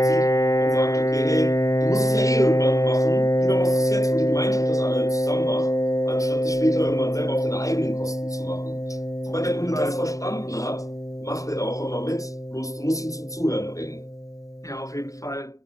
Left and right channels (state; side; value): late; right; 0.16 ms